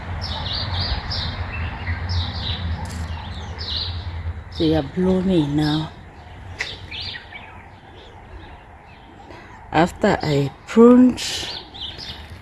They are blooming now. After I pruned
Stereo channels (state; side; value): identical; both; correlation 1.00